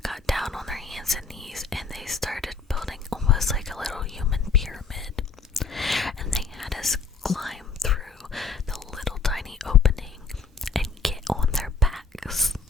got down on their hands and knees, and they started building almost like a little human pyramid, and they had us climb through the little tiny opening and get on their backs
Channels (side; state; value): right; quieter; 4.7 dB